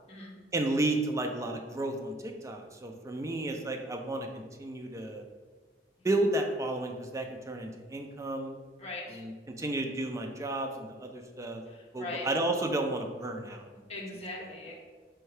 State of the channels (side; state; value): both; normal; correlation 0.53